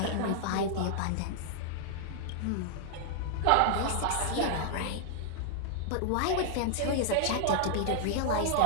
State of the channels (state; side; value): different; both; correlation -0.01